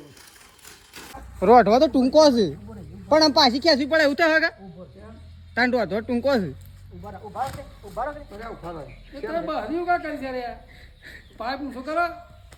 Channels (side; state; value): both; identical; correlation 1.00